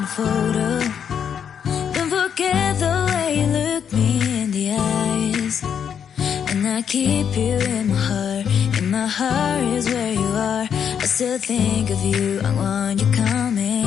Photo. Don't forget the way you look me in the eyes. And I keep you in my heart. In my heart is where you are. I still think of you. I want you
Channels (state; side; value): quieter; right; 7.9 dB